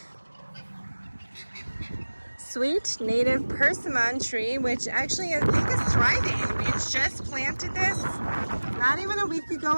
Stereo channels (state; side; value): inverted; both; correlation -1.00